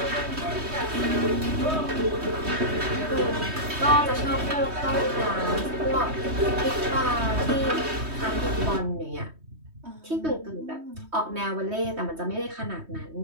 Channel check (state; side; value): late; left; 3.2 ms